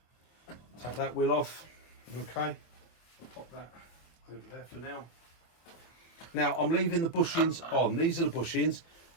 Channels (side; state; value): right; late; 25 ms